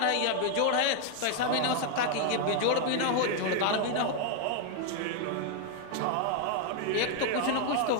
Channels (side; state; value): both; different; correlation 0.00